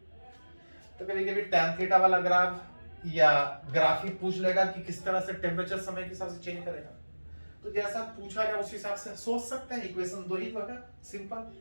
तो कभी कभी tan थीटा वाला ग्राफ या ग्राफ ही पूछ लेगा कि किस तरह से टेम्परेचर समय के हिसाब से चेंज करेगा, तो जैसा पूछा जाए उस हिसाब से सोच सकते हैं। इक्वेशन दो ही होगा सिंपल,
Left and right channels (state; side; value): inverted; both; correlation -1.00